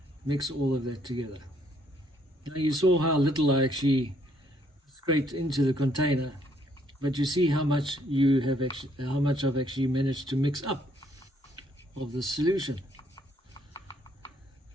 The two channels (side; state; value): both; normal; correlation 0.68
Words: mix all of that together. Now, you saw how little I actually scraped into the container, but you see how much I've actually managed to mix up of the solution.